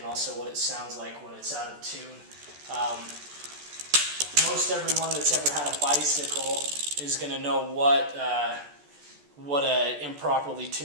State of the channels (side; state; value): left; late; 14 ms